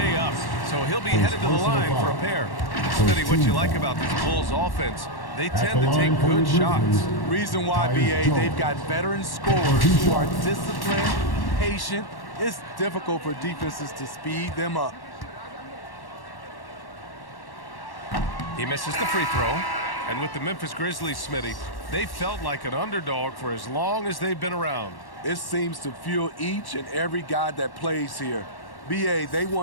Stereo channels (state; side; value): late; right; 1.1 ms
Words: up. So he'll be headed to the line for a pair. Smitty, what you like about this Bulls offense, they tend to take good shots. Reason why, BA, they've got veteran scorers who are disciplined, patient. It's difficult for defenses to speed them up. He misses the free throw. And with the Memphis Grizzlies, Smitty, they felt like an underdog for as long as they've been around. It seems to fuel each and every guy that plays here. BA, they